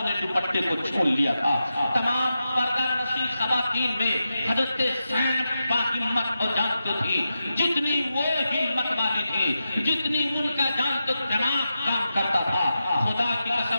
نے دوپٹے کو چھین لیا تھا۔ تمام پردہ نشین خواتین میں حضرت زینب باہمت اور جانتے تھی، جتنی وہ ہمت والی تھی، جتنی ان کا جانتے دماغ کام کرتا تھا۔ خدا کی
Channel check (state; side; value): inverted; both; correlation -0.90